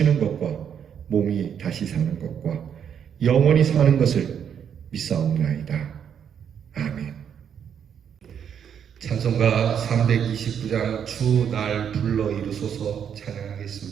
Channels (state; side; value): quieter; left; 8.2 dB